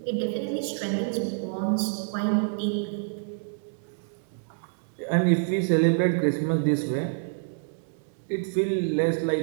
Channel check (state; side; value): silent; left; digital silence